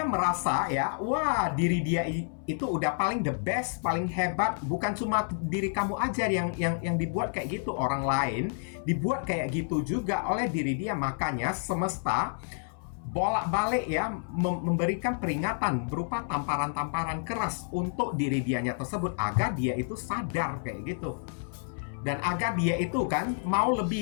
merasa, ya, wah, diri dia itu udah paling the best, paling hebat. Bukan cuma diri kamu aja yang dibuat kayak gitu, orang lain dibuat kayak gitu juga oleh diri dia. Makanya semesta bolak-balik, ya, memberikan peringatan berupa tamparan-tamparan keras untuk diri dianya tersebut agar dia itu sadar kayak gitu. Dan agar dia itu kan mau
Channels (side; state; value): right; silent; 58 dB below the other